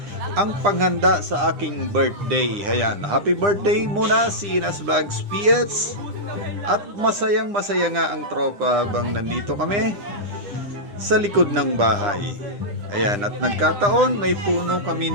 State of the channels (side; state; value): left; late; 9.9 ms